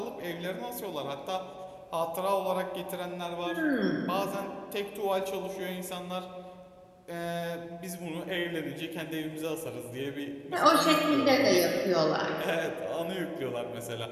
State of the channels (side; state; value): both; identical; correlation 1.00